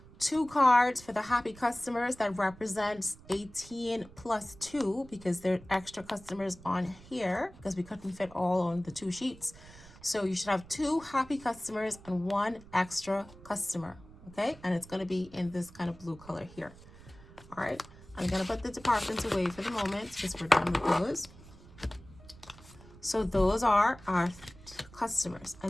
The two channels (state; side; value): noise; right; rumble, 20 dB below the sound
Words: 2 cards for the happy customers that represents 18 plus 2 because there are extra customers on here because we couldn't fit all on the 2 sheets. So you should have 2 happy customers and 1 extra customer, okay? And it's going to be in this kind of blue color here. All right, I'm going to put the departments away for the moment because we're done with those. So those are our customers.